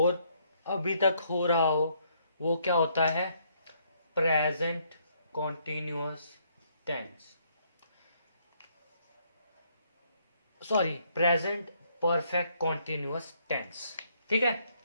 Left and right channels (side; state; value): both; inverted; correlation -0.70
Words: अभी तक हो रहा हो वो क्या होता है, present continuous tense. Sorry, present perfect continuous tense. ठीक है।